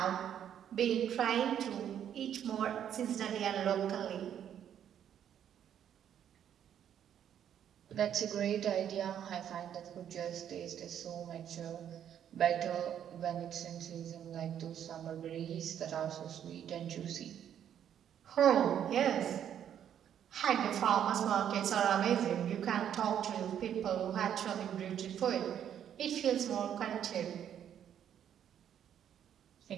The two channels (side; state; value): left; quieter; 9.6 dB